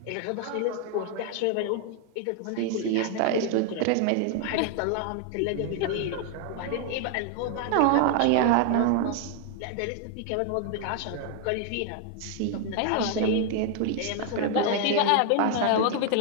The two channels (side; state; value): both; different; correlation 0.00